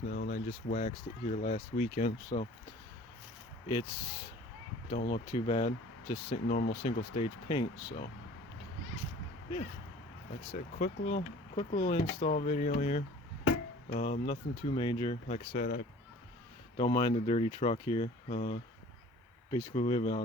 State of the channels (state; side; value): normal; both; correlation 0.47